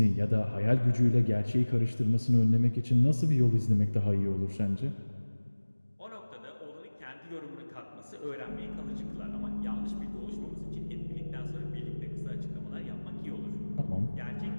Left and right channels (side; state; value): both; inverted; correlation -1.00